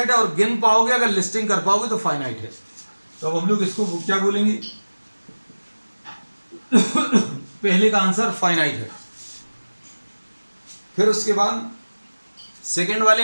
है, और गिन पाओगे अगर लिस्टिंग कर पाओगे तो फाइनाइट है. तो अब हम लोग इसको क्या बोलेंगे? पहले का आंसर फाइनाइट है. फिर उसके बाद सेकेंड वाले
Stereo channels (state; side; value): inverted; both; correlation -1.00